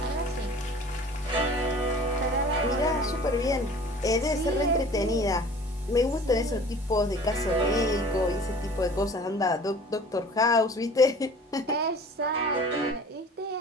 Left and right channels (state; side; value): normal; both; correlation 0.46